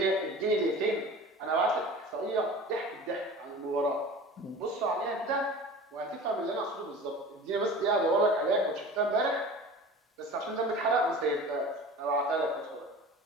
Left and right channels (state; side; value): normal; both; correlation 0.38